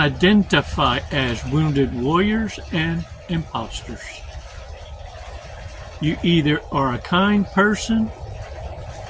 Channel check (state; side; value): identical; both; correlation 1.00